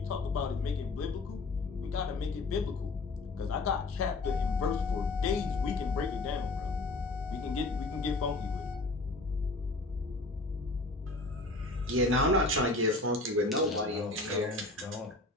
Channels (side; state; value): right; quieter; 3.1 dB